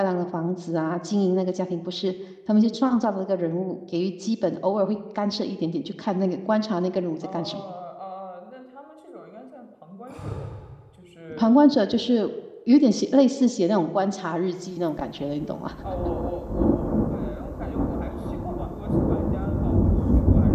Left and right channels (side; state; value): both; identical; correlation 1.00